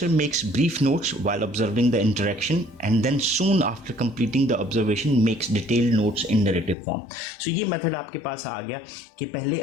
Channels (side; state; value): right; drops out; at 6.8 s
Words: makes brief notes while observing the interaction and then soon after completing the observation makes detailed notes in narrative form. So ये method आपके पास आ गया कि पहले